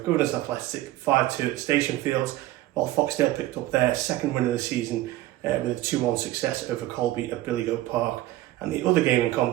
Governors Athletic 5-2 at Station Fields, while Foxdale picked up their second win of the season with a 2-1 success over Colby at Billygoat Park. And the other game in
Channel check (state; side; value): quieter; left; 15.9 dB